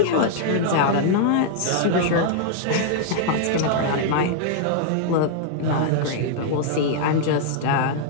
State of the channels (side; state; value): both; different; correlation -0.01